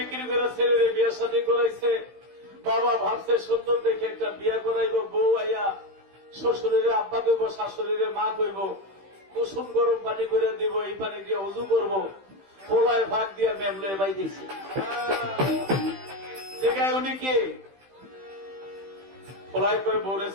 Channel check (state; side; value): late; left; 15 ms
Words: করে ছেলের বিয়ে শাদী করাইছে। বাবা ভাবছে সুন্দর দেখে একটা বিয়ে করাইব, বউ আইয়া শ্বশুরের আব্বা কইব, শাশুড়ির মা কইব, কুসুম গরম পানি করে দিব, এই পানি দিয়ে উজু করবো, পোলায় ভাগ দিয়া মেমলে বাই দিছে। জায়গায় উনি কি পোলায় কয়ে বউরে